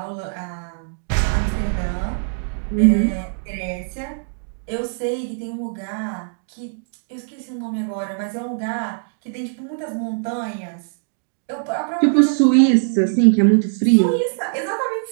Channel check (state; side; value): silent; left; digital silence